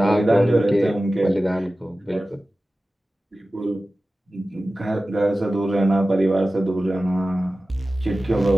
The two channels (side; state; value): both; normal; correlation 0.96